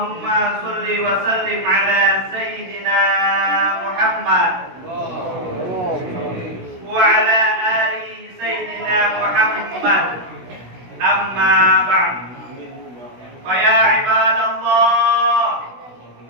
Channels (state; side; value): late; left; 16 ms